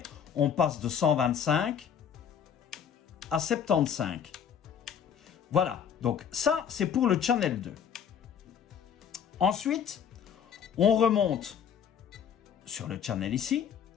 on passe de 125 à 75. Voilà, donc ça, c'est pour le channel 2. Ensuite, on remonte sur le channel ici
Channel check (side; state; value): right; quieter; 8.0 dB